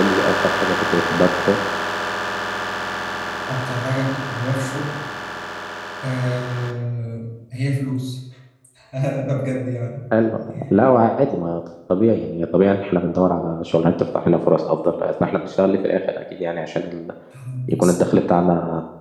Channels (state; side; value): identical; both; correlation 1.00